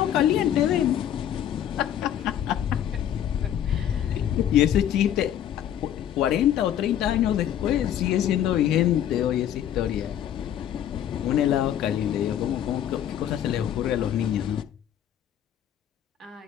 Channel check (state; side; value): quieter; right; 10.5 dB